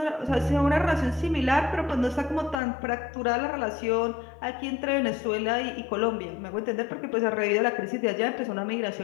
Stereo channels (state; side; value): drops out; right; at 2.6 s